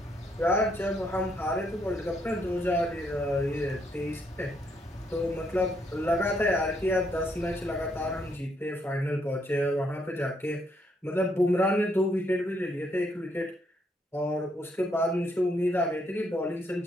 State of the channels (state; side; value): normal; both; correlation 0.74